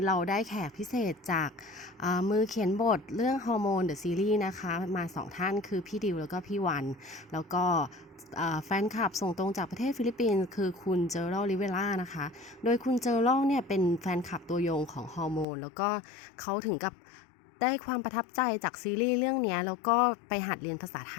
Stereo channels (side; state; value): right; drops out; at 15.5 s